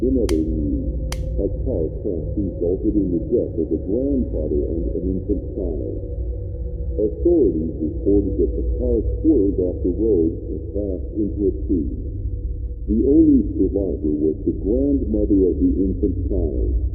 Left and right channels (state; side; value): identical; both; correlation 1.00